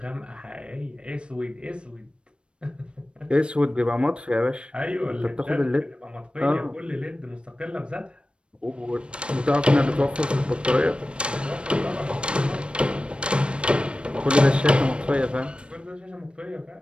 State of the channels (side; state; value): left; late; 0.057 ms